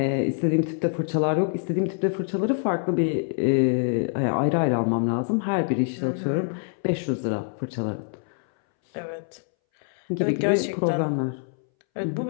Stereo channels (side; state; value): right; silent; 62 dB below the other